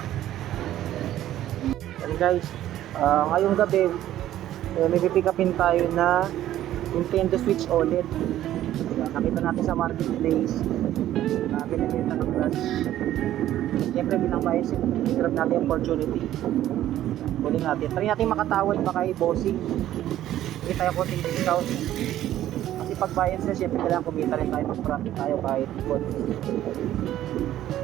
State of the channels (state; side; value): quieter; left; 12.9 dB